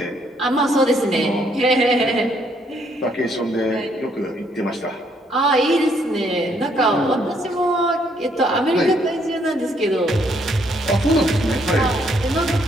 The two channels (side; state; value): both; normal; correlation 0.70